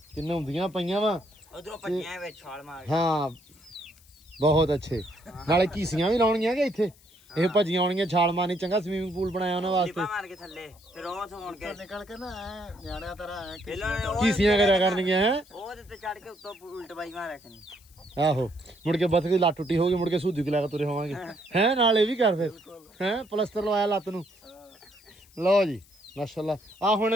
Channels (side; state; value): left; noise; hiss, 27 dB below the sound